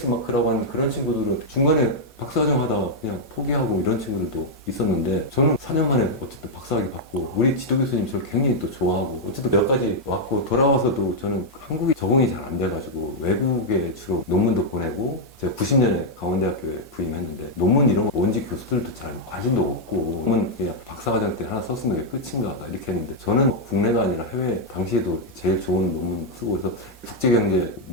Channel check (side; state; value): both; normal; correlation -0.03